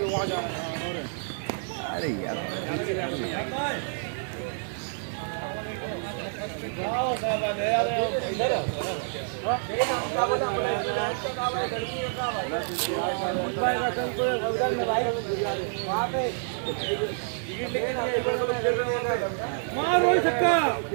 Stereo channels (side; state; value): left; silent; 59 dB below the other